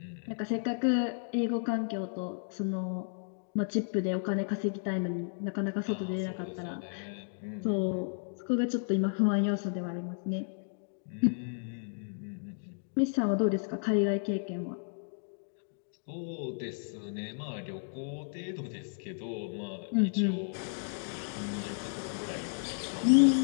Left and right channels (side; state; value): right; silent; digital silence